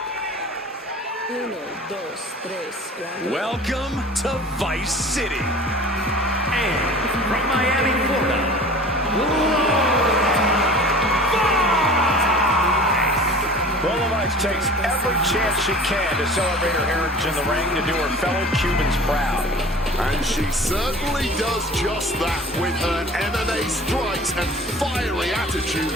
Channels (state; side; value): normal; both; correlation 0.42